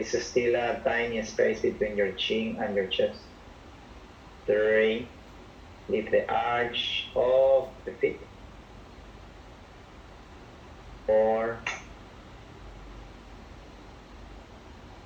still a tiny space between your chin and your chest. 3, lift the arch of the feet. 4,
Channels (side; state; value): both; identical; correlation 1.00